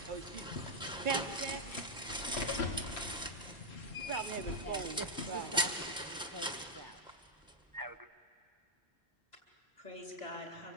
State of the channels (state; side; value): normal; both; correlation -0.03